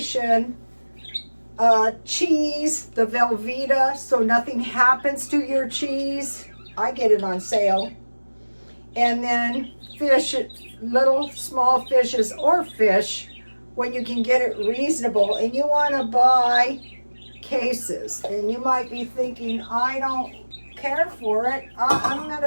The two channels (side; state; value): both; inverted; correlation -1.00